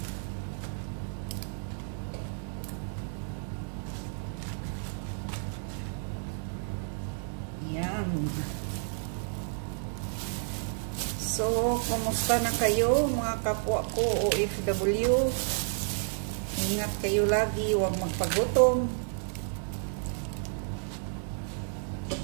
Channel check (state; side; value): silent; left; 57 dB below the other